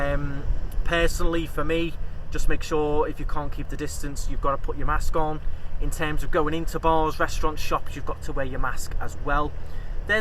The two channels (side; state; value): both; identical; correlation 1.00